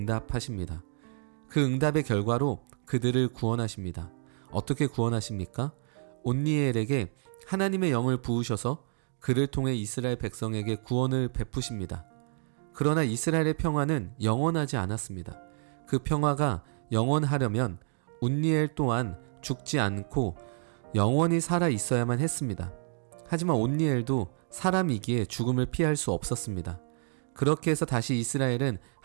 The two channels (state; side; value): silent; left; 58 dB below the other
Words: 그 응답의 결과로 그들을 구원하십니다. 어떻게 구원하십니까? 온니엘에게 하나님의 영을 부으셔서 그를 통해 이스라엘 백성에게 구원을 베푸십니다. 그러나 이스라엘의 평화는 영원하지 않았습니다. 그 평화가 영원하려면 온니엘 또한 죽지 않고 영원히 살아 있어야만 했습니다. 하지만 온니엘도 사람이기에 죽음을 피할 수 없었습니다. 그렇게 해서 다시 이스라엘은